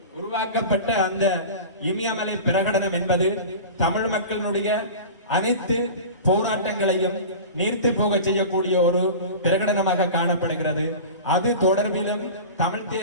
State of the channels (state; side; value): inverted; both; correlation -0.33